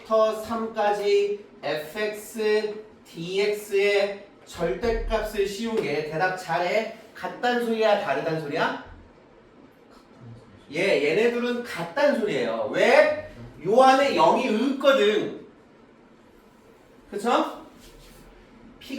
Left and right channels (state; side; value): identical; both; correlation 1.00